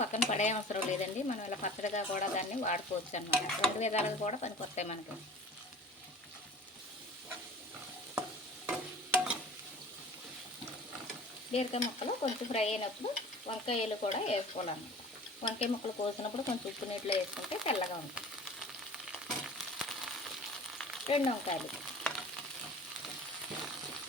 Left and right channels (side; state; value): both; normal; correlation 0.42